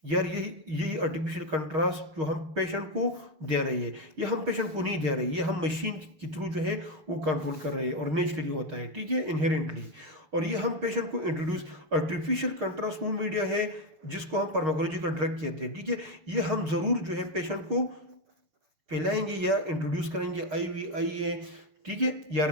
यार यही आर्टिफिशियल कंट्रास्ट जो हम पेशेंट को दे रही है, ये हम पेशेंट को नहीं दे रही है, ये हम मशीन के थ्रू जो है वो कंट्रोल कर रहे हैं और नेचुरली होता है, ठीक है, इनहेरेंटली। और ये हम पेशेंट को इंट्रोड्यूस, आर्टिफिशियल कंट्रास्ट वो मीडिया है जिसको हम फार्माकोलॉजिकल ड्रग कहते हैं, ठीक है। ये हम ज़रूर जो है पेशेंट को पिलाएंगे या इंट्रोड्यूस करेंगे IVIA, ठीक है, या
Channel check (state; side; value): late; left; 6.4 ms